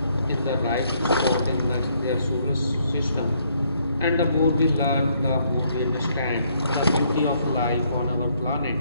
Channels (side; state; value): both; inverted; correlation -0.70